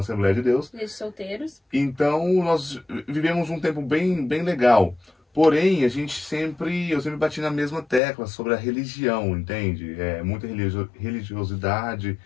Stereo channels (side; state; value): right; drops out; at 8.0 s